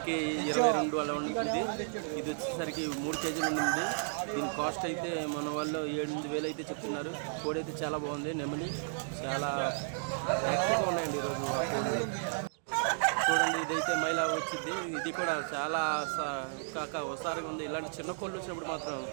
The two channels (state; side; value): silent; left; digital silence